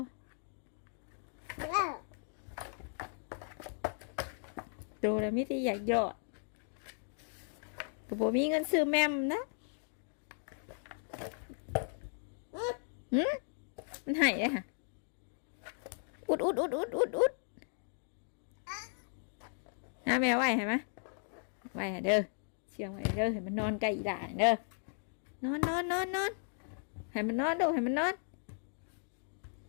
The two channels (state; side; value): silent; right; 53 dB below the other